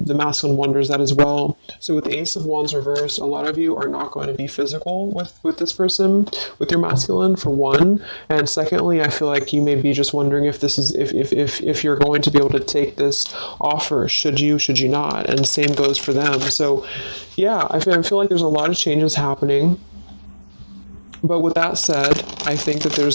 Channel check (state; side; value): inverted; both; correlation -1.00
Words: masculine wonders that as well. So with the Ace of Wands reversed, a lot of you are not going to be physical with this person, with your masculine, for one. And secondly, I feel like you may be just wondering if this is if you're going to be able to take this offer. Should you not? And same goes for them. So yeah, I feel like there's a lot of changes happening. But with that said, I think that